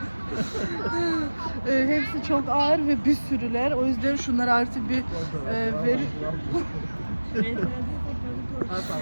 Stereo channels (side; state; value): both; inverted; correlation -1.00